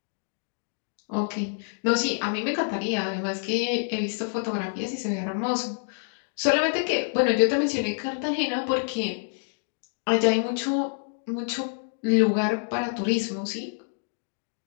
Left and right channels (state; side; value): silent; right; 59 dB below the other